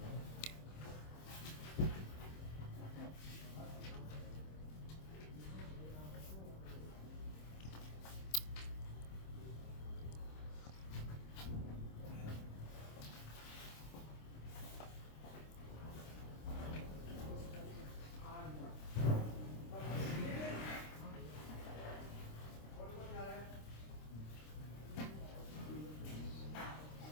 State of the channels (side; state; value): right; late; 26 ms